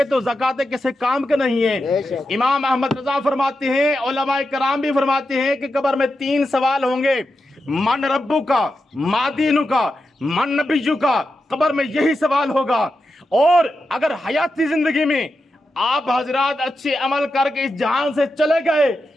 تو زکاتیں کسی کام کا نہیں ہے۔ امام احمد رضا فرماتے ہیں، علماء کرام بھی فرماتے ہیں کہ قبر میں 3 سوال ہوں گے، من ربو کا، ما دینو کا، من نبیو کا۔ قبر میں یہی سوال ہوگا۔ اور اگر حیاتی زندگی میں آپ حضرات اچھے عمل کر کے اس جہان سے چلے گئے،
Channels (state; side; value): normal; both; correlation 0.89